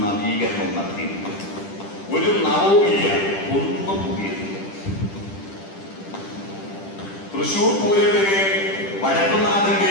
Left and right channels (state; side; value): late; right; 10 ms